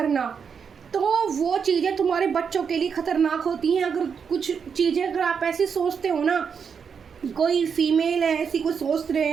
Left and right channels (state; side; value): quieter; left; 6.5 dB